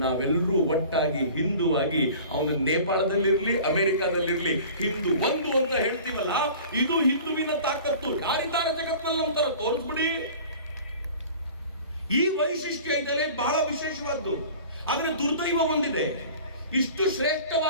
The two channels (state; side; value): inverted; both; correlation -0.43